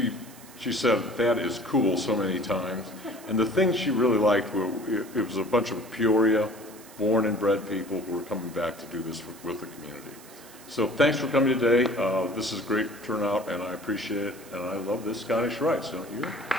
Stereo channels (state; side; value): noise; right; hiss, 20 dB below the sound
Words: said, "That is cool," so many times. And the thing she really liked, it was a bunch of Peoria born and bred people who were coming back to do this with the community. So thanks for coming today. This is a great turnout, and I appreciate it. And I love this Scottish Rites, don't you?